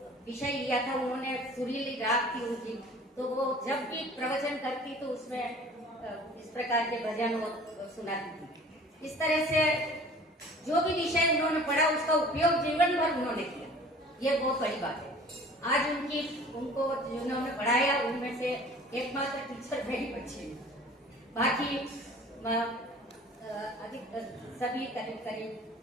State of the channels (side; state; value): both; normal; correlation 0.46